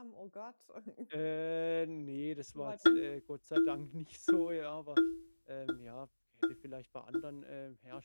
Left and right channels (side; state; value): both; inverted; correlation -1.00